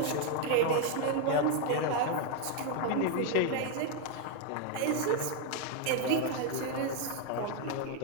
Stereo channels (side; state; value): both; different; correlation 0.01